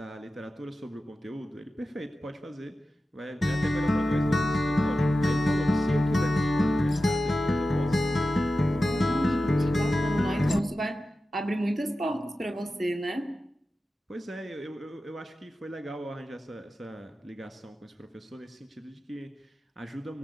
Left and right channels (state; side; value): normal; both; correlation 0.93